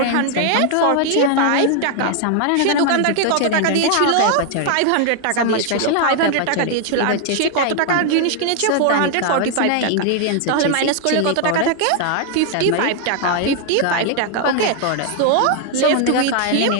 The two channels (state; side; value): different; both; correlation 0.00